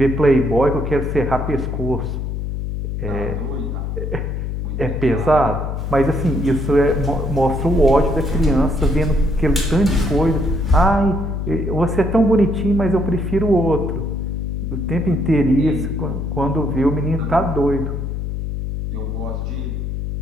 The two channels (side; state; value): left; noise; hum, 3 dB below the sound